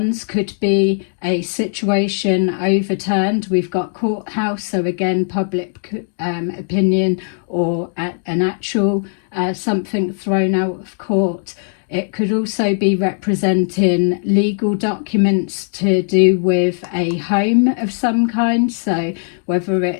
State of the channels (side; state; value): right; silent; 64 dB below the other